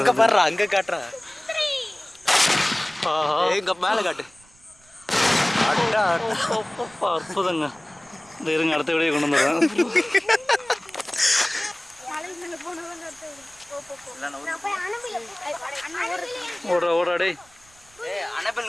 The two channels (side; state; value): right; noise; rumble, 29 dB below the sound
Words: பாருடா, அங்க காட்றா. எங்க மேல காட்டு. அடடா அற்புதங்க. இந்த இருங்க அடுத்த வீடியோ கொண்டு வந்துடுறேன். ஓடுறா டேய்.